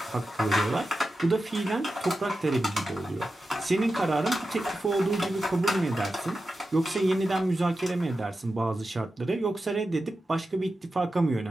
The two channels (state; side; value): normal; both; correlation 0.92